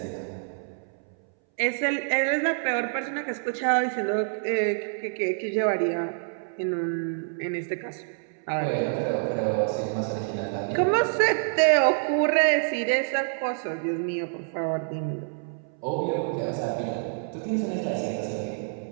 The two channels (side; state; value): left; silent; 60 dB below the other